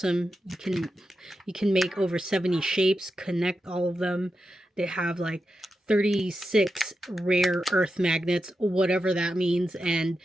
You can make over 70 shapes, connect all of them. They have like 36 rare earth magnets, whatever that means. And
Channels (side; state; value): both; normal; correlation 0.89